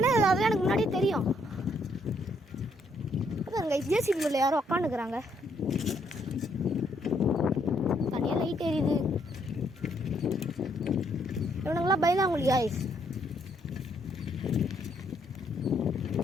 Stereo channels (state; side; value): normal; both; correlation 0.71